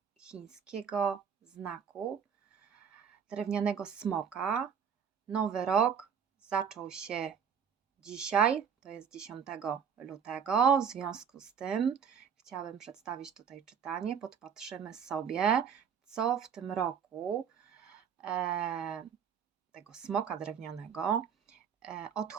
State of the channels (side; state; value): left; quieter; 7.5 dB